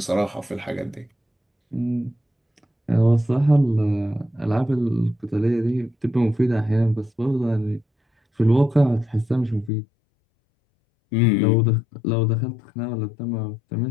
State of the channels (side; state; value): right; drops out; at 9.7 s